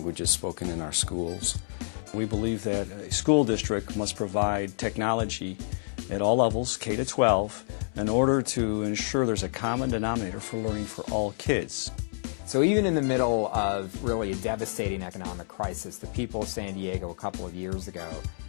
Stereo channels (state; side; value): silent; right; 59 dB below the other